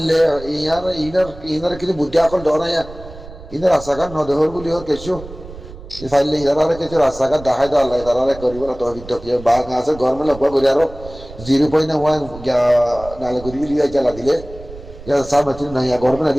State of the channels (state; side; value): noise; right; rumble, 16 dB below the sound